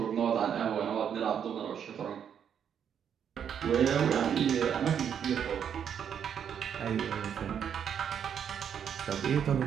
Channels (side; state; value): left; quieter; 8.3 dB